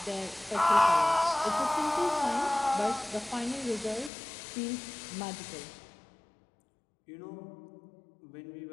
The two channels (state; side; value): drops out; right; at 4.1 s